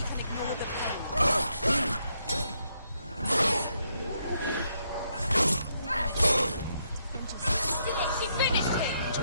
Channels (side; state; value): both; inverted; correlation -0.77